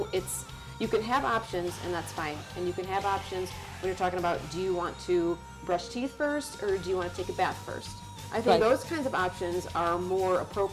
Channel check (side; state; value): both; identical; correlation 1.00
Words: can have options, and that's fine. And you can have options when you're talking about, do you want to brush teeth first or do you want to take a bath first? I think those kinds of options are more